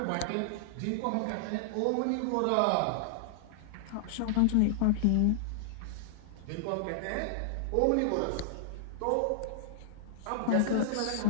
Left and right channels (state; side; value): different; both; correlation -0.01